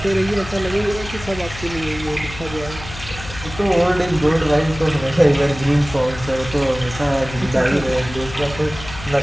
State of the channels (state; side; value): noise; left; hum, 13 dB below the sound